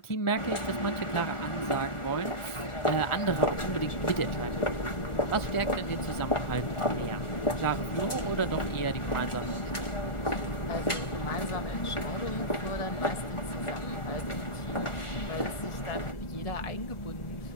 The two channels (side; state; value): right; late; 1.4 ms